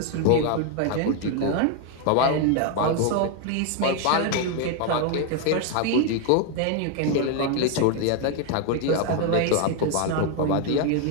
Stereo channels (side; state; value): both; different; correlation 0.01